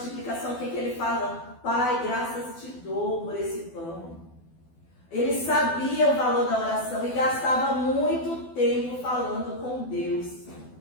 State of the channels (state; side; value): late; right; 12 ms